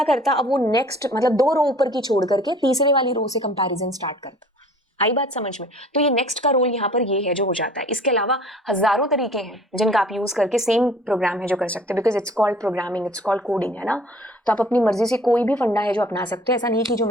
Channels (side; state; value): both; normal; correlation 0.50